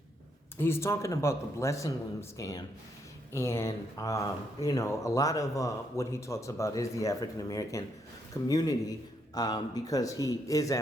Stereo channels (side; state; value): both; normal; correlation 0.76